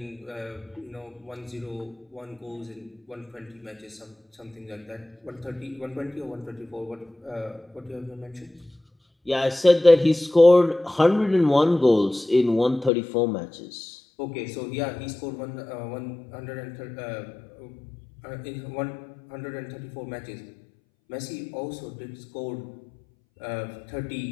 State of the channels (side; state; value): right; drops out; at 12.9 s